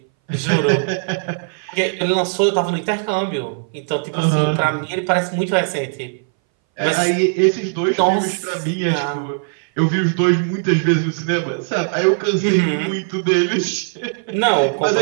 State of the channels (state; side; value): silent; left; 62 dB below the other